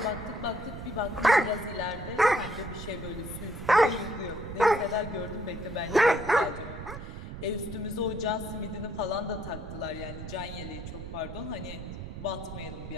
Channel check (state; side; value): noise; right; rumble, 9 dB below the sound